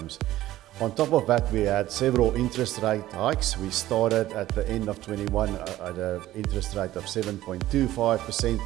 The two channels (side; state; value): left; quieter; 14.9 dB